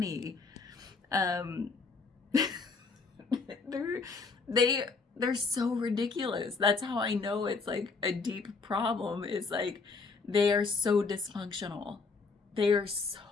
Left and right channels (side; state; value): right; quieter; 4.4 dB